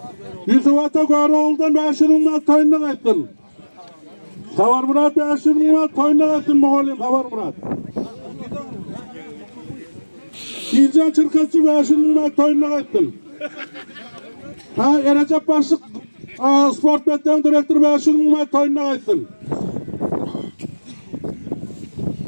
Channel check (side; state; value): both; inverted; correlation -1.00